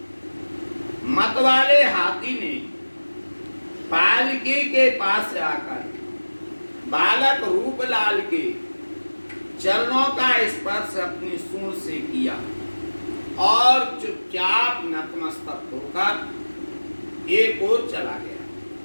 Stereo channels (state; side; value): inverted; both; correlation -1.00